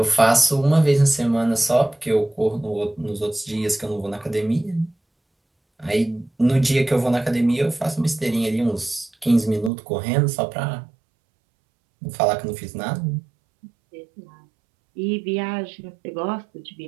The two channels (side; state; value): left; drops out; at 9.7 s